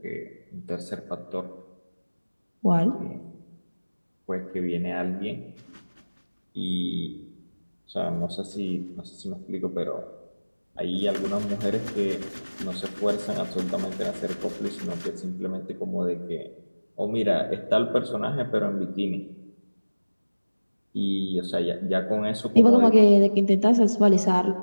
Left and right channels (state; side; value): inverted; both; correlation -1.00